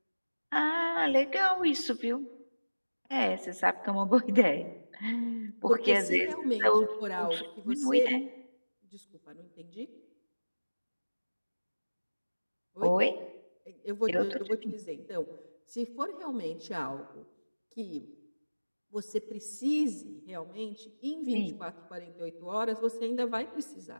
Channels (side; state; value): both; inverted; correlation -1.00